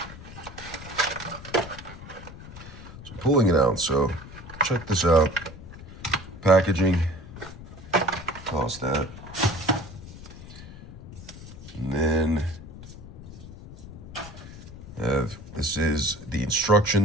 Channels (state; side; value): noise; left; rumble, 14 dB below the sound